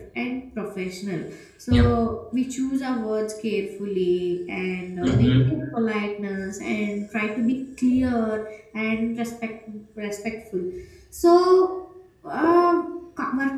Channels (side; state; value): both; identical; correlation 1.00